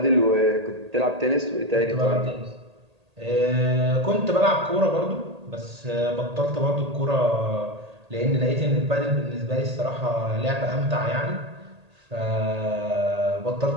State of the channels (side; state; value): left; late; 1.8 ms